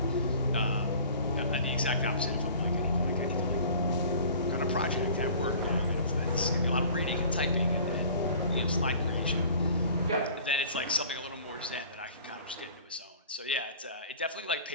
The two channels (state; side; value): inverted; both; correlation -0.46